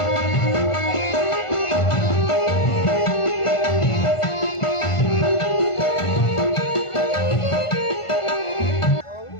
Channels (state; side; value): late; right; 1.5 ms